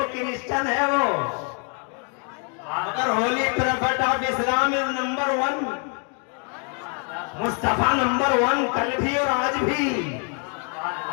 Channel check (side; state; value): right; quieter; 39.8 dB